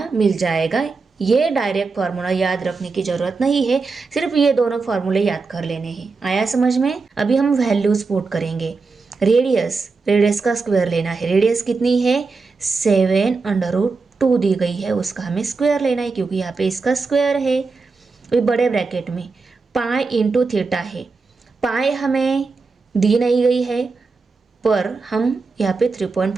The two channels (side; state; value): left; quieter; 4.3 dB